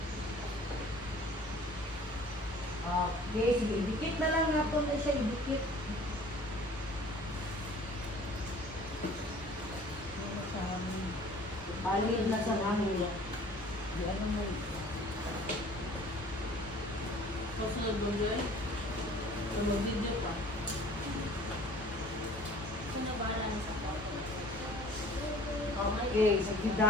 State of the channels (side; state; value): both; normal; correlation 0.50